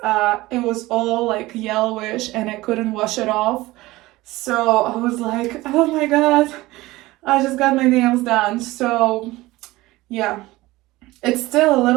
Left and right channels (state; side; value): quieter; left; 19.1 dB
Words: it was all like yellowish and I couldn't wash it off. So I was like, oh my god, I just got my nails done. So yeah, it's still a